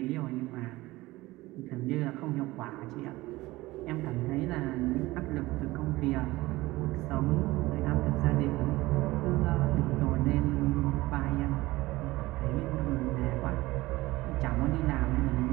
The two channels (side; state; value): left; quieter; 19.3 dB